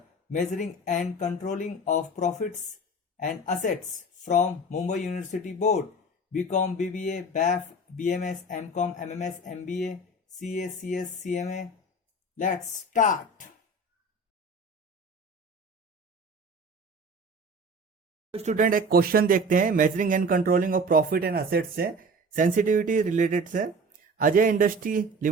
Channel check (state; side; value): normal; both; correlation 0.38